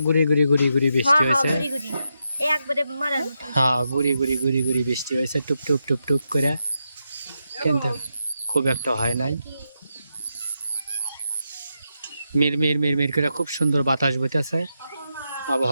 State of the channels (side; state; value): both; inverted; correlation -0.85